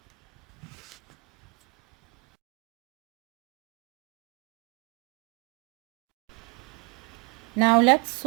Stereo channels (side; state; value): left; quieter; 30.0 dB